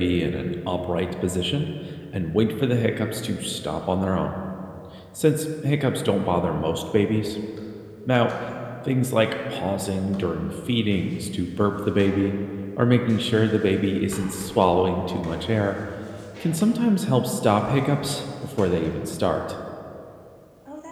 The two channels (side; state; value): both; identical; correlation 1.00